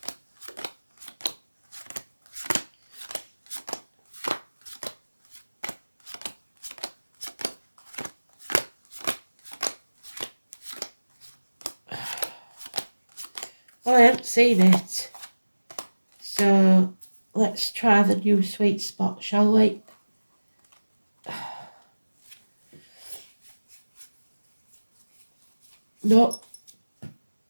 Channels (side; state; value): both; inverted; correlation -1.00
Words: Well, I haven't seen it, so let's try the new sweet spot, shall we? No.